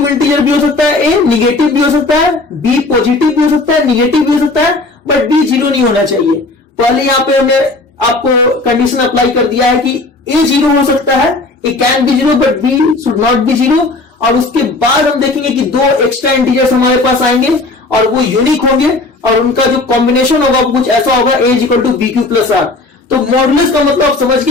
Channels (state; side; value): quieter; right; 3.2 dB